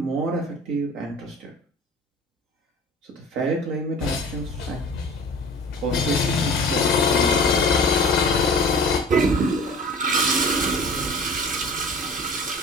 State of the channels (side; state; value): both; normal; correlation 0.42